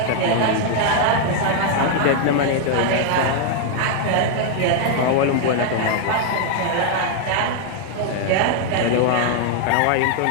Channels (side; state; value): both; different; correlation 0.00